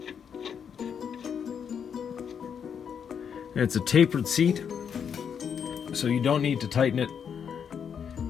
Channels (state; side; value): quieter; right; 7.5 dB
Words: And it's a tapered seat, so you don't need to tighten it